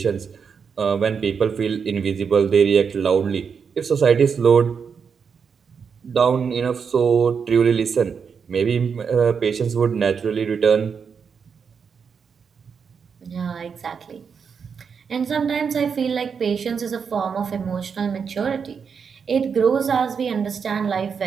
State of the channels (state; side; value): quieter; left; 6.3 dB